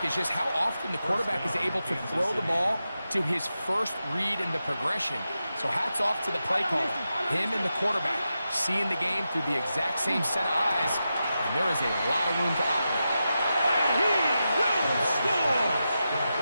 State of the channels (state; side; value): inverted; both; correlation -0.90